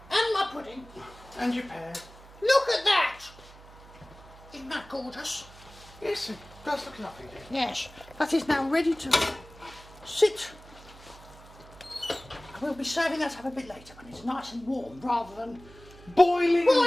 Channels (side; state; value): right; noise; hum, 21 dB below the sound